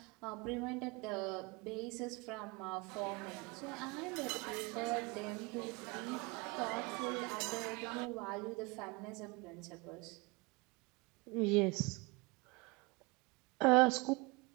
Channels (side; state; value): left; quieter; 26.8 dB